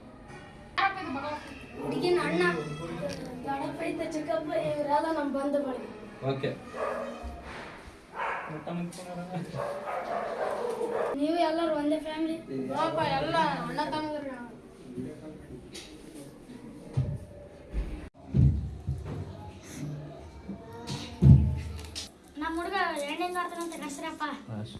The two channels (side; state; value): both; identical; correlation 1.00